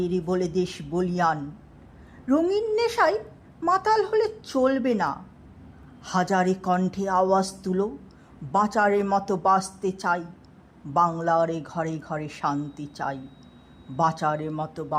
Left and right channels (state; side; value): identical; both; correlation 1.00